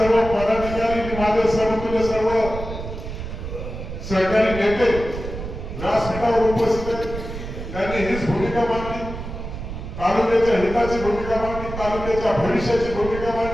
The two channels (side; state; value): right; noise; rumble, 8 dB below the sound